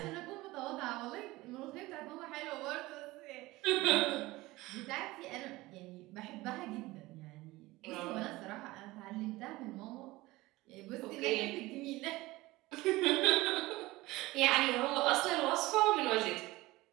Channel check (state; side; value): quieter; left; 19.6 dB